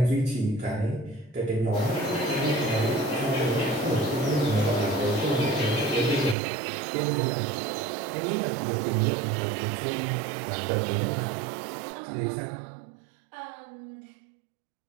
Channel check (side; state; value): left; drops out; at 6.4 s